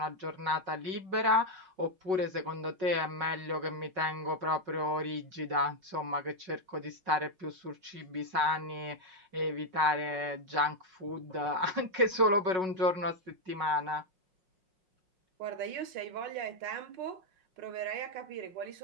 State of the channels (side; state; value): left; late; 5.3 ms